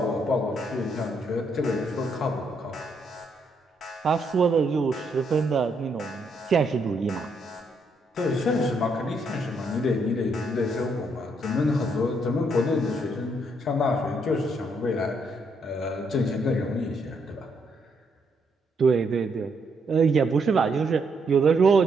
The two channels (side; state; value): both; normal; correlation 0.75